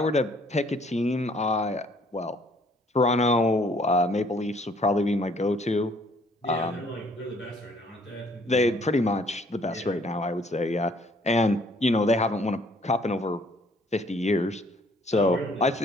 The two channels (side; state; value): both; normal; correlation 0.61